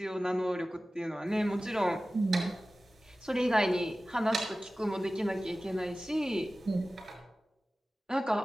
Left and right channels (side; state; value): both; normal; correlation 0.96